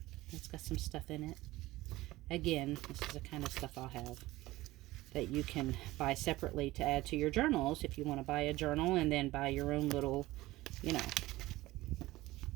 it's got some stuff in it. Again, this is the kind of stuff I'll have that you can buy separately to add to your journals if you want to buy a journal and then buy your own little, you know,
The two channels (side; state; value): left; quieter; 18.0 dB